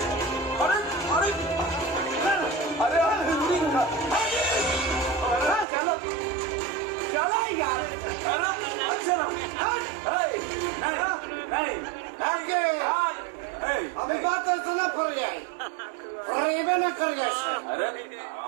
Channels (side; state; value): left; drops out; at 5.7 s